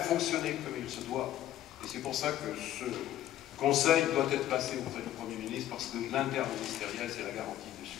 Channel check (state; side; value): quieter; right; 12.9 dB